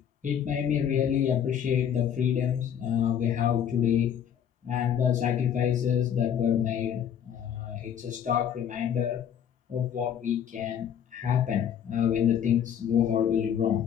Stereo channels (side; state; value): right; quieter; 8.9 dB